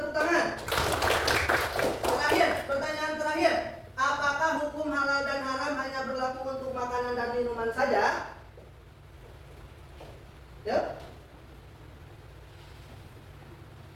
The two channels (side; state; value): both; identical; correlation 1.00